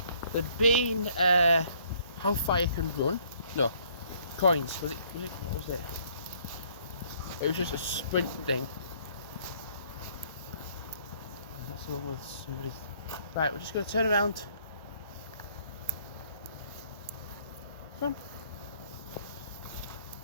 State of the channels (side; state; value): both; inverted; correlation -0.62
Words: how far you can run. No, coins. What was it? It was just a sprint thing. That's the one with somebody's. Right, we're just going to turn around. Come on.